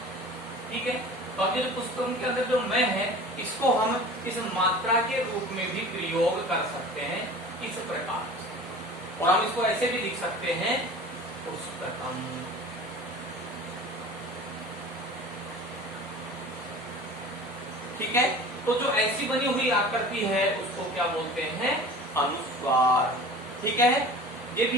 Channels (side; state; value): both; normal; correlation 0.40